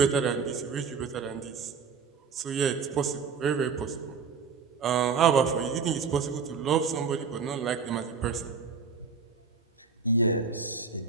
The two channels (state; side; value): quieter; left; 5.6 dB